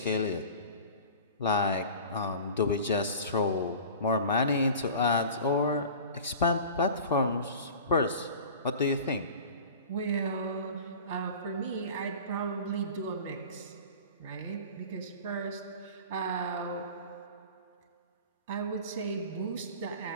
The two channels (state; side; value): inverted; both; correlation -0.39